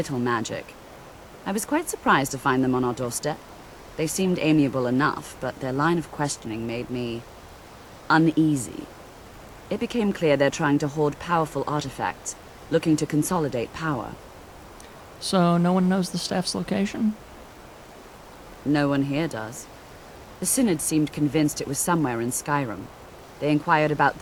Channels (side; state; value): both; identical; correlation 1.00